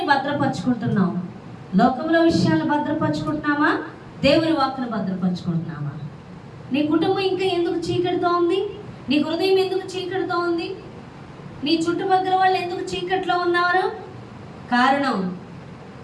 భద్రపరుచుకుంటున్నాము? లోకంలో విషయాలను భద్రపరుచుకుంటున్నామా? దేవుని వాక్కును భద్రపరుచుకుంటున్నామా? నీ కుటుంబం ఇంకా ఎందుకు చీకటితో ఉంది? నీ హృదయం ఎందుకు చీకటితో ఉంది? నీ చుట్టుపక్కల వాళ్ళు ఎందుకు చీకట్లో ఉన్నారు? కారణం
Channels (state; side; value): identical; both; correlation 1.00